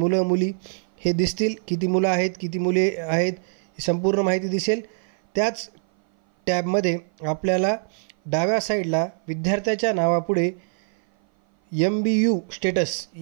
मुली हे दिसतील। किती मुलं आहेत किती मुले आहेत ही संपूर्ण माहिती दिसेल। त्याच टॅबमध्ये आपल्याला डाव्या साईडला विद्यार्थ्याच्या नावापुढे MBU स्टेटस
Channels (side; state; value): left; silent; 58 dB below the other